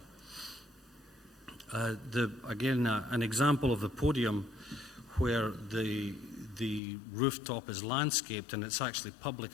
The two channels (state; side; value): drops out; right; at 6.8 s